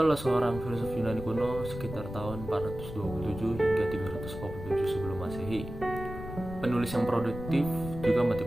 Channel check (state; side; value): noise; left; rumble, 10 dB below the sound